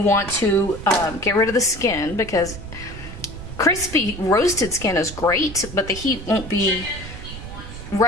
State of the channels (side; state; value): right; noise; rumble, 12 dB below the sound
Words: to get rid of the skin because crispy roasted skin is great, but the heat won't be